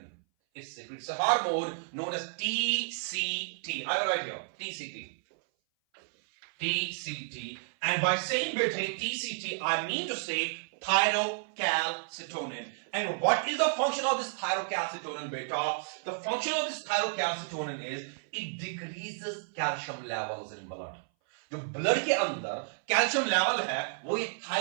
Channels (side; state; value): left; silent; 57 dB below the other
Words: It secretes a hormone known as TCT. I will write here TCT. TCT. And by saying TCT, I mean to say thyrocalcitonin. And what is the function of this thyrocalcitonin, beta? The function of this thyrocalcitonin is it decreases calcium levels in blood. जो blood के अंदर calcium level है वो ये